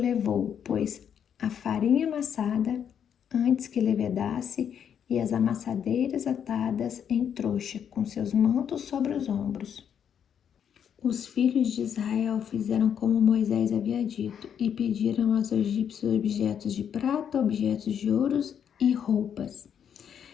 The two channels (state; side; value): quieter; right; 8.4 dB